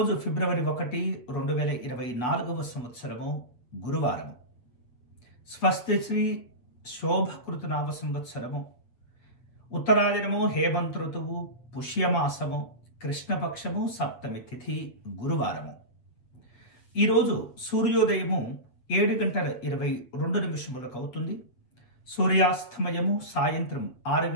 ఫిబ్రవరి 1, 2024 సంవత్సరము గురువారము. స్వస్తి శ్రీ శోభకృతనామ సంవత్సరము, ఉత్తరాయణము, హేమంత్ ఋతువు, పుష్యమాసము, కృష్ణపక్షము, సప్తమి తిథి, గురువారము. ఈరోజు సూర్యోదయము 7:22 అవుతుంది. సూర్యాస్తమయము సాయంత్రం 6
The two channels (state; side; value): late; right; 8.3 ms